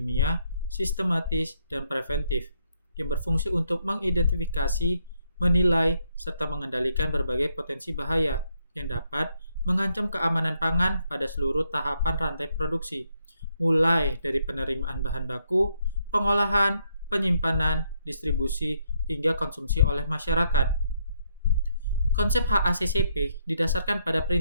sistematis, dan preventif yang berfungsi untuk mengidentifikasi, menilai, serta mengendalikan berbagai potensi bahaya yang dapat mengancam keamanan pangan pada seluruh tahapan rantai produksi, mulai dari penerimaan bahan baku, pengolahan, penyimpanan, distribusi, hingga konsumsi oleh masyarakat. Konsep HACCP didasarkan pada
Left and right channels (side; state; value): both; inverted; correlation -0.75